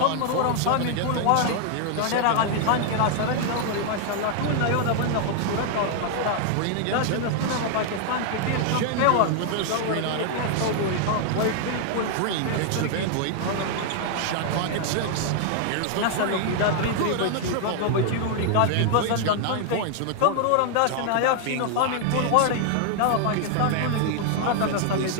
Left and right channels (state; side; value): different; both; correlation 0.00